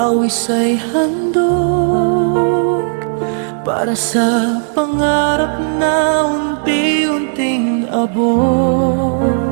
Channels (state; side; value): silent; left; digital silence